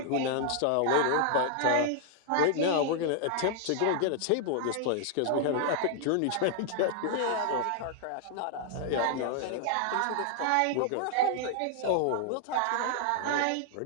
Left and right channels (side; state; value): both; different; correlation 0.00